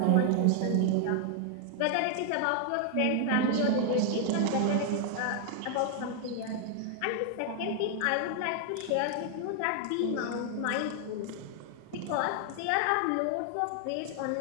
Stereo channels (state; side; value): different; both; correlation 0.00